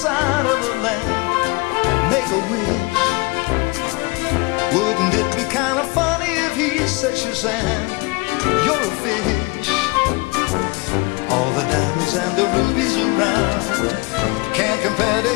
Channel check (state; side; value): quieter; right; 26.2 dB